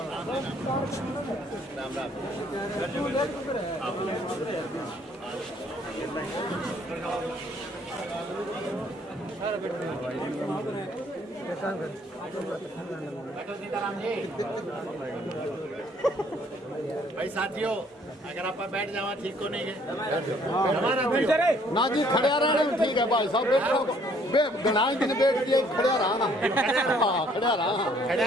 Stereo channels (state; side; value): normal; both; correlation 0.62